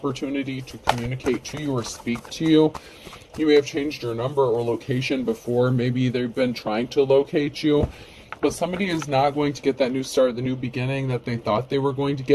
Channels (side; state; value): both; identical; correlation 1.00